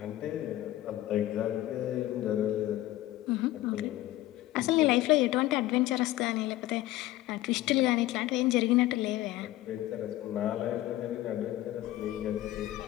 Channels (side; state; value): right; quieter; 15.6 dB